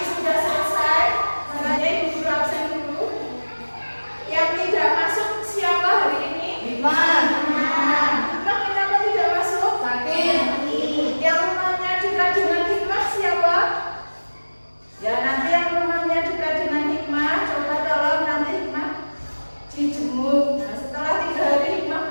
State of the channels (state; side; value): inverted; both; correlation -1.00